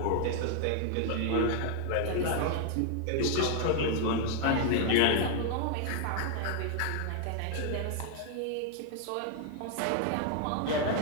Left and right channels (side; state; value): both; different; correlation 0.00